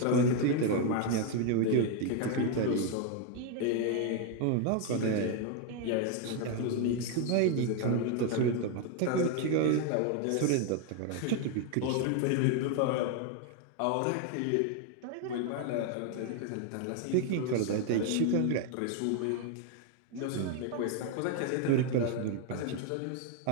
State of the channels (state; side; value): different; both; correlation 0.01